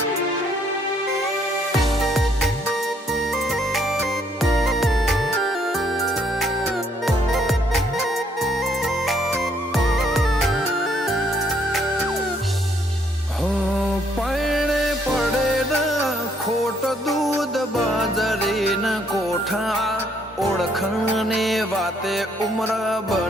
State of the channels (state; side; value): normal; both; correlation 0.68